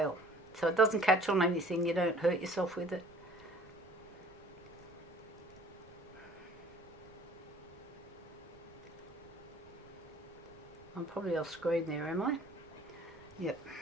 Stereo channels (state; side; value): noise; right; rumble, 26 dB below the sound